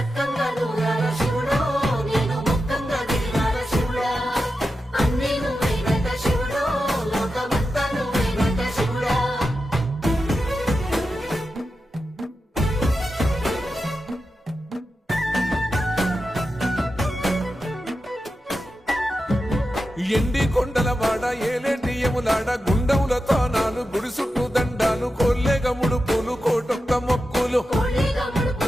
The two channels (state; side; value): normal; both; correlation 0.90